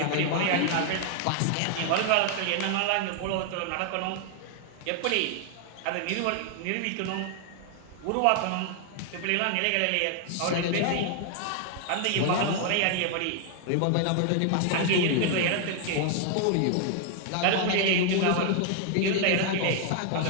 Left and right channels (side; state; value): both; different; correlation 0.00